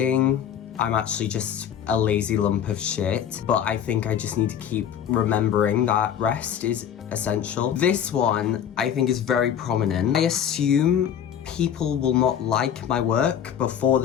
I'm actually just a lazy lump of shit, but I think I just need to keep remembering that rest is essential. This one, I think, is very prominent. I assume people will not like my work before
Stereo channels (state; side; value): quieter; right; 9.0 dB